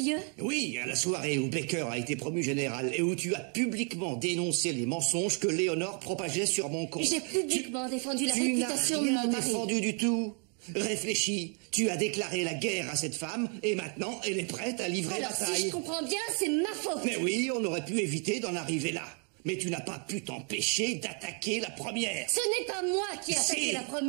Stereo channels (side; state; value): left; quieter; 39.1 dB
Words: Oui, à la soirée où Baker a été promu général et où tu as publiquement dénoncé les mensonges que Léonore propageait sur mon compte. J'ai publiquement défendu la réputation de mon mari. Tu n'as rien défendu du tout. Réfléchis, tu as déclaré la guerre à cette femme et maintenant elle est prête à livrer la bataille. Alors si je comprends bien, c'est ma faute. Mais oui, on aurait pu éviter d'en arriver là. Mais tu n'as pas pu t'empêcher d'attaquer la première. Ce n'est pas moi qui ai attaqué la